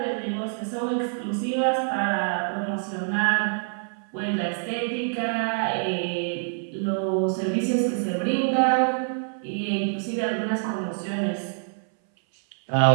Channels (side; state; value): left; silent; 59 dB below the other